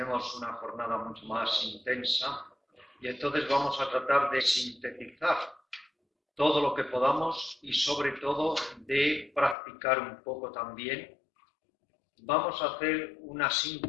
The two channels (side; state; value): right; drops out; at 9.6 s